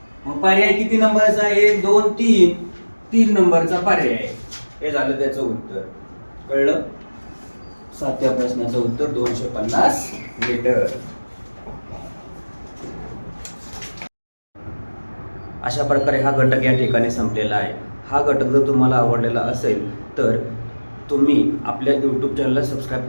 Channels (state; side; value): inverted; both; correlation -1.00